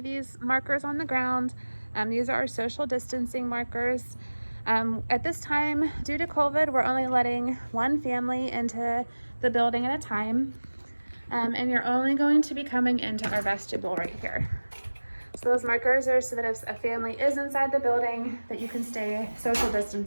these markers on the ground. These are our social distancing markers. At this time, due to COVID, we're only letting one family into the building at a time. And you're only going to be coming into our vestibule right here. So those markers are so that if a family is inside the building, that you can stay social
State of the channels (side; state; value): both; inverted; correlation -1.00